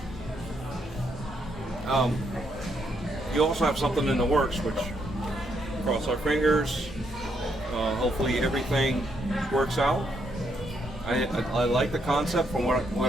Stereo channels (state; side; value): normal; both; correlation 0.75